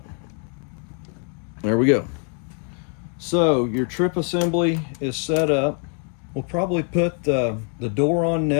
There we go. So your trip assembly is set up. We'll probably put the door on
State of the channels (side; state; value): right; quieter; 39.1 dB